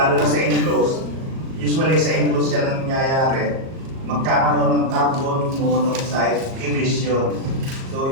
na sa enclosed, usually sa enclosed yan ang nangyayari, magkakaroon ng carbon monoxide emission. So,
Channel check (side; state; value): left; late; 37 ms